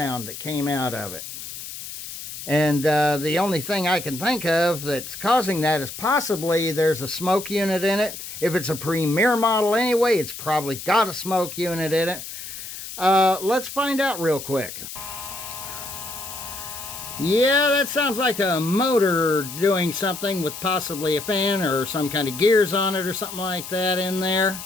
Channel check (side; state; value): left; noise; hiss, 10 dB below the sound